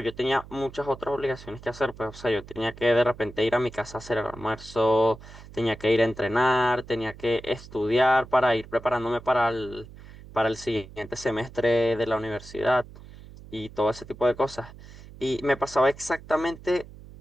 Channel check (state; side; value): noise; right; hum, 18 dB below the sound